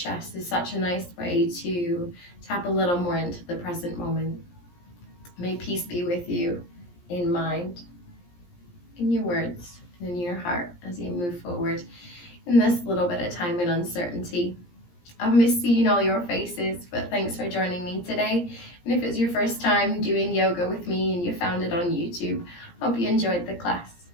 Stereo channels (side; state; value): right; late; 17 ms